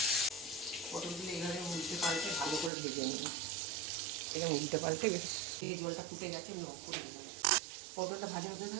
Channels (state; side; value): drops out; left; at 2.7 s